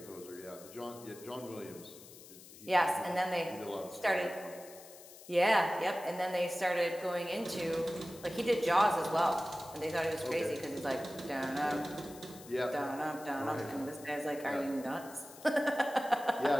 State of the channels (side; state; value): left; noise; hiss, 18 dB below the sound